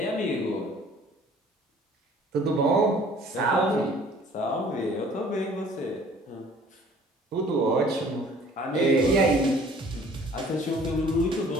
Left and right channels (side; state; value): both; normal; correlation 0.53